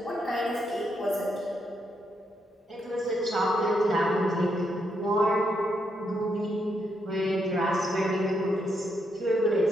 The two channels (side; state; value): both; normal; correlation 0.79